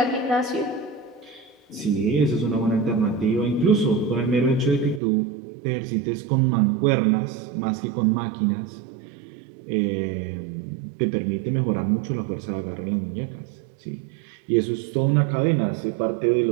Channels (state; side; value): drops out; left; at 5.0 s